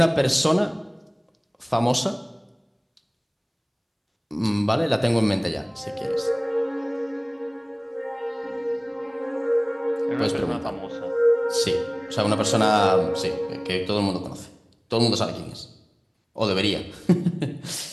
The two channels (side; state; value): both; identical; correlation 1.00